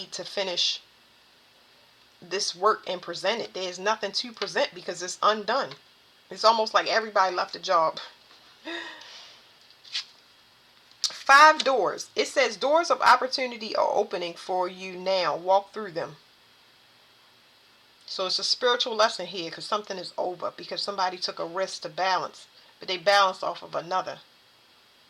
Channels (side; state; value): both; identical; correlation 1.00